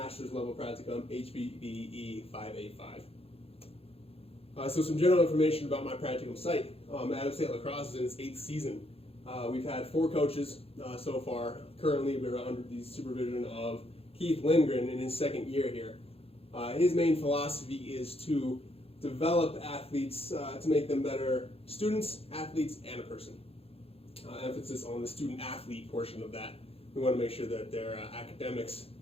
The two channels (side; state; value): right; late; 0.28 ms